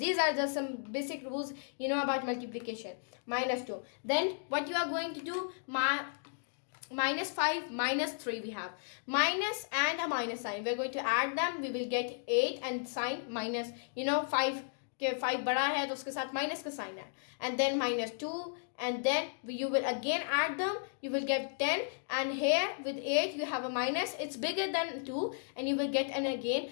are just some basic rules you know about multiplication. Minus 2. Then what you are going to do, minus 5 minus 3 we have. Minus and a minus sign. We are going to add them. We will get 8 and sign minus, 5 के 5 बड़ा है तो उसके साथ minus का sign है and then minus 2 and then you will again add them, you will get 10 and here with 8 you have a minus, it's bigger than 2 and you will get and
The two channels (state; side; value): silent; right; digital silence